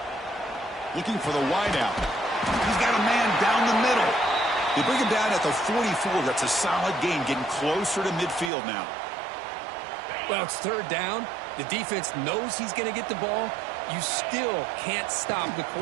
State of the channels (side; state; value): left; drops out; at 8.5 s